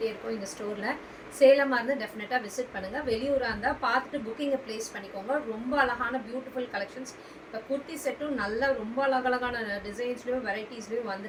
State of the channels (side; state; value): both; identical; correlation 1.00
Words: இருக்கோம் எங்கள் ஸ்டோரில். சேலமாக இருந்தால் டெஃபினட்டாக விசிட் பண்ணுங்கள். வெளியூராக இருந்தால் பார்த்துட்டு புக்கிங்கை ப்ளேஸ் பண்ணிக்கோங்க. ரொம்ப அழகான பியூட்டிஃபுல் கலெக்ஷன்ஸ். இப்போ குர்த்தி செட்டும் நல்ல ரொம்ப அழகழகான டிசைன்ஸ்லேயும் வெரைட்டிஸ்லேயும்